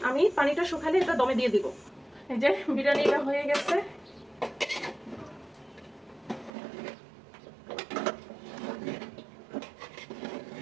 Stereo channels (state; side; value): drops out; left; at 6.5 s